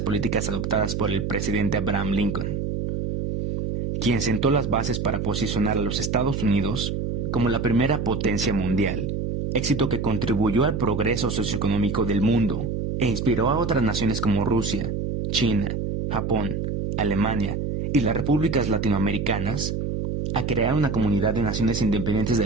políticas adoptadas por el presidente Abraham Lincoln. quien sentó las bases para posicionar a los Estados Unidos como la primera potencia mundial, éxito que contribuyó al progreso socioeconómico del mundo e inspiró a otras naciones como Rusia, China, Japón, Alemania y las repúblicas latinoamericanas a crear una comunidad de naciones independientes de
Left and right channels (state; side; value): noise; right; hum, 2 dB below the sound